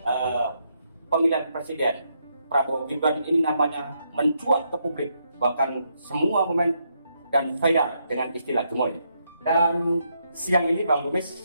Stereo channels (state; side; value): inverted; both; correlation -0.78